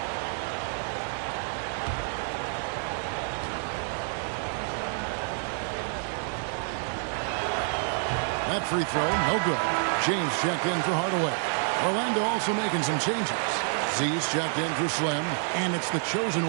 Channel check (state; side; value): silent; left; 55 dB below the other